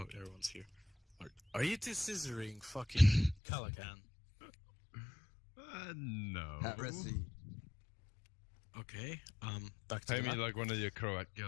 everyone's here. Are you two scissoring fucking Calacan? No. Heresy. Okay. Back to Pay the me map. like one of your Croat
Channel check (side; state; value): right; drops out; at 3.4 s